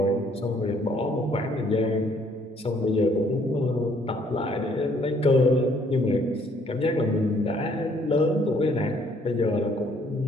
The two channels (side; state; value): both; normal; correlation 0.64